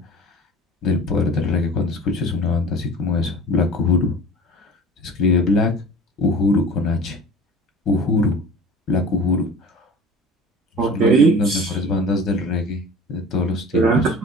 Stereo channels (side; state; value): both; normal; correlation 0.41